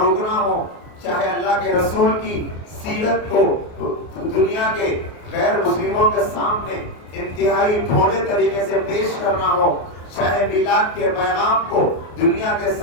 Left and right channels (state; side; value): late; right; 28 ms